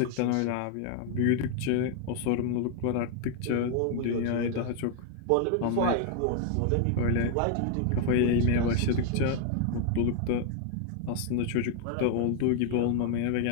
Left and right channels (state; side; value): different; both; correlation 0.00